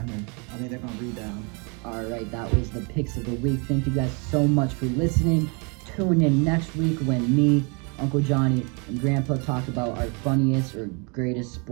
I think they're gonna rebound. All right, that was the picks of the week. Thank you guys so much for listening. Tune in next week when me, Uncle Johnny, and Grandpa talk about our funniest or greatest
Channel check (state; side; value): quieter; left; 32.9 dB